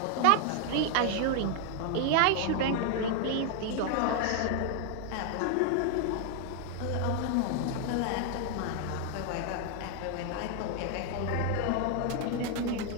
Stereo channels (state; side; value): different; both; correlation 0.00